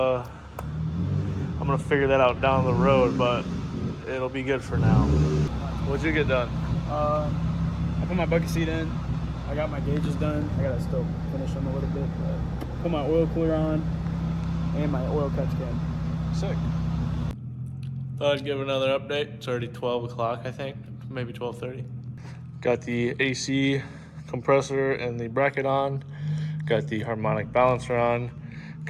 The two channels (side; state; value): both; identical; correlation 1.00